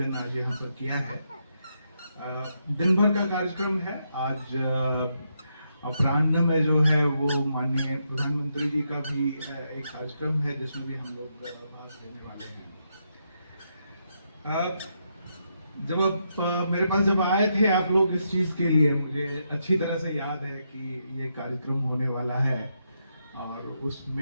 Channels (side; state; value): both; inverted; correlation -0.81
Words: आज यहाँ पर किया है। दिन भर का कार्यक्रम है। आज अपराह्न में जो है वो माननीय प्रधानमंत्री जी का भी एक कार्यक्रम है, जिसमें भी हम लोग भाग लेने वाले हैं। जब आप मेरे पास जब आए थे आप लोग इस चीज के लिए, मुझे अच्छी तरह से याद है कि ये कार्यक्रम होने वाला है, और